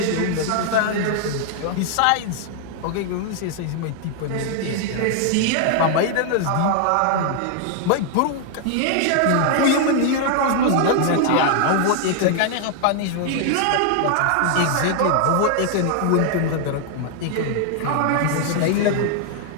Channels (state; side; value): different; both; correlation 0.00